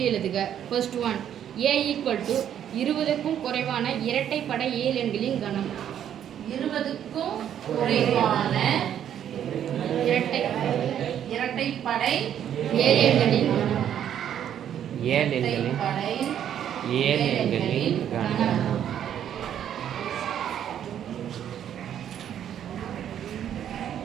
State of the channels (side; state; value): left; quieter; 9.9 dB